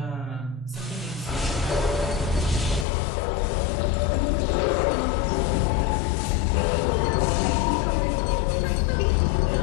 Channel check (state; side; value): drops out; right; at 2.9 s